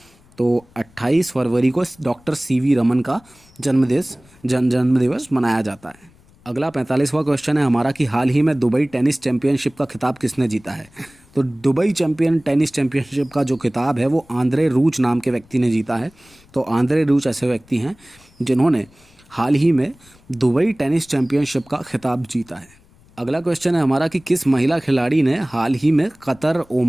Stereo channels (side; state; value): left; noise; rumble, 28 dB below the sound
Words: तो 28 फरवरी को डॉक्टर CV रमन का जन्मदिवस मनाया जाता है। अगला 45वां क्वेश्चन है हमारा कि हाल ही में दुबई टेनिस चैंपियनशिप का खिताब किसने जीता है। तो दुबई टेनिस चैंपियनशिप का जो खिताब है वो आंद्रे रूच नाम के व्यक्ति ने जीता है। तो आंद्रे रूच ऐसे व्यक्ति हैं जिन्होंने हाल ही में दुबई टेनिस चैंपियनशिप का खिताब जीता है? अगला क्वेश्चन है हमारा कि किस महिला खिलाड़ी ने हाल ही में कतर